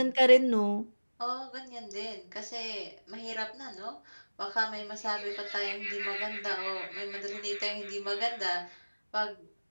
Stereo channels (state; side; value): inverted; both; correlation -1.00